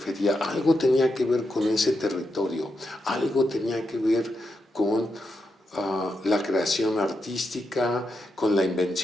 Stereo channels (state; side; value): normal; both; correlation 0.85